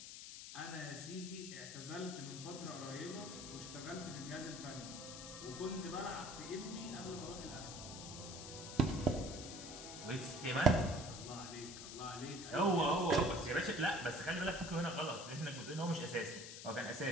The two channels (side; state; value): left; noise; hiss, 10 dB below the sound